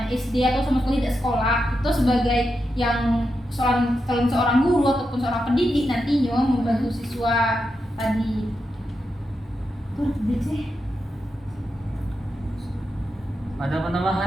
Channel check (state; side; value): normal; both; correlation 0.87